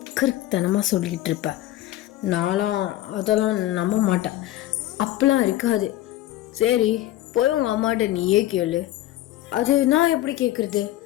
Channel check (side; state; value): right; quieter; 14.7 dB